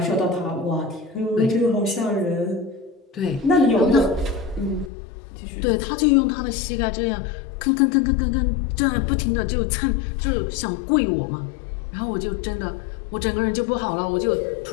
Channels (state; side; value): drops out; right; at 4.9 s